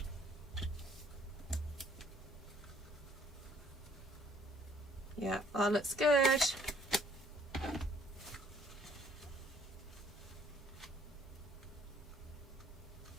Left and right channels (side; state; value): both; normal; correlation 0.61